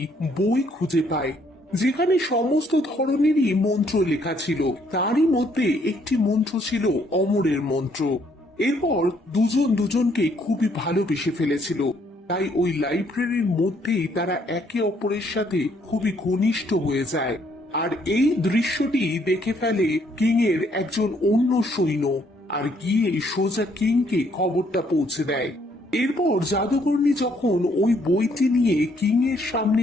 বই খুঁজে পায়, যেখানে সমস্ত ধরনেরই মন্ত্র লেখা ছিল। তারই মধ্যে একটি মন্ত্র ছিল অমরের মন্ত্র। এরপর দুজন দুজনকে খুবই ভালোবেসে ফেলেছিল, তাই ওই লাইব্রেরির মধ্যেই তারা একে অপরের সাথে খুবই ঘনিষ্ঠ হয়ে যায়। আর এই দৃশ্যটি দেখে ফেলে কিং এর একজন অন্য সৈন্য, আর গিয়ে সোজা কিংকে খবরটা পৌঁছে দেয়। এরপর জাদুকর্ণী যখন ওই বইটি নিয়ে কিং এর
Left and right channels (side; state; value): both; normal; correlation 0.68